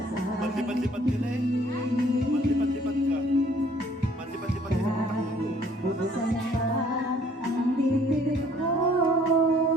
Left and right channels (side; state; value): both; normal; correlation 0.59